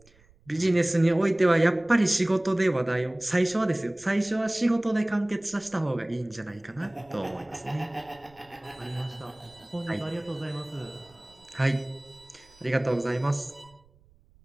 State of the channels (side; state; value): right; noise; rumble, 30 dB below the sound